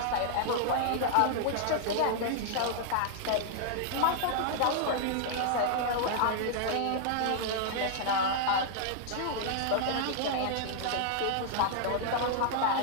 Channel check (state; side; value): different; both; correlation -0.01